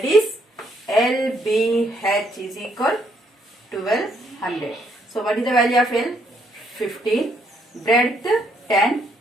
is LBH is equal 1200. So what is the value of L? 15. Breadth 10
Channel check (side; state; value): both; normal; correlation 0.71